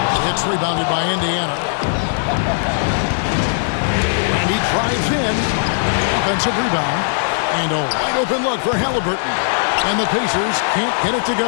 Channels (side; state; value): right; silent; digital silence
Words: It's rebounded by Indiana. And he drives in. Offensive rebound. And a wide open look for Halliburton. And the Pacers can't get it to